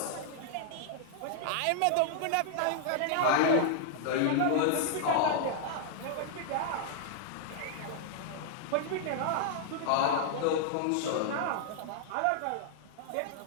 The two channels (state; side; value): different; both; correlation -0.01